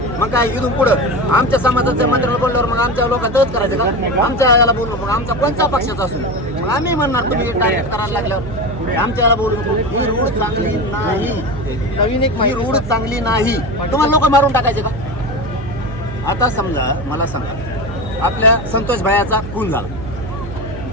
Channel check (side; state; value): right; noise; hum, 10 dB below the sound